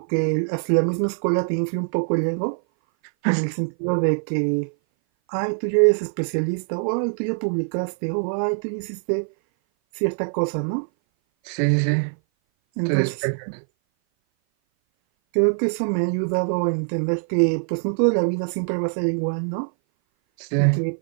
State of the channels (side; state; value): left; silent; 58 dB below the other